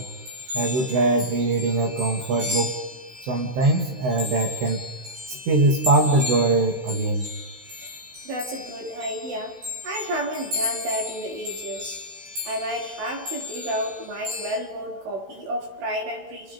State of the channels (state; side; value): late; left; 16 ms